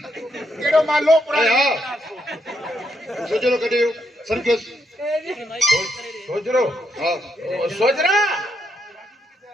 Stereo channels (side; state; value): both; normal; correlation 0.78